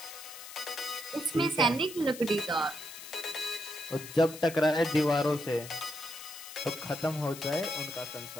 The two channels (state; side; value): noise; left; hiss, 13 dB below the sound